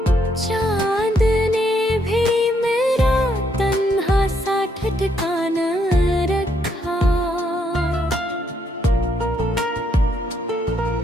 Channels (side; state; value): both; normal; correlation 0.73